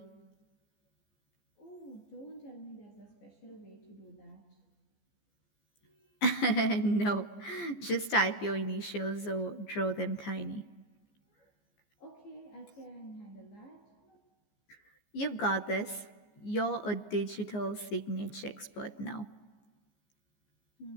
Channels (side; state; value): right; late; 14 ms